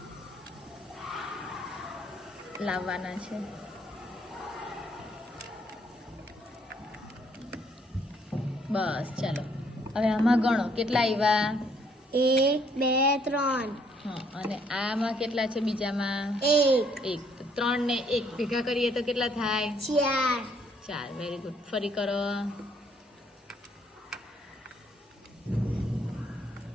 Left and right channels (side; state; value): both; normal; correlation 0.67